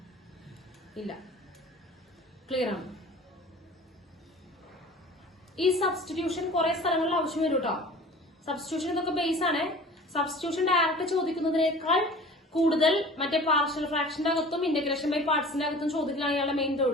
ഇല്ല, ക്ലിയർ ആണ്. ഈ സബ്സ്റ്റിറ്റ്യൂഷൻ കുറെ സ്ഥലങ്ങളിൽ ആവശ്യം വരും കേട്ടോ. സബ്സ്റ്റിറ്റ്യൂഷൻ ഇതൊക്കെ ബേസ് ആണ്. സബ്സ്റ്റിറ്റ്യൂഷൻ ഡയറക്റ്റ് ചോദിക്കുന്നതിനേക്കാൾ കൂടുതൽ മറ്റേ പാർഷ്യൽ ഫ്രാക്ഷന്റെ അകത്തും ഇന്റഗ്രേഷൻ ബൈ പാർട്സിന്റെ അകത്തും ചോദിക്കലാണ് ഇയാളുടെ മെയിൻ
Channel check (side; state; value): both; normal; correlation 0.43